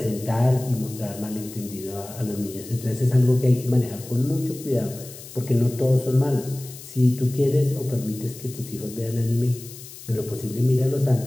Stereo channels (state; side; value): noise; left; hiss, 16 dB below the sound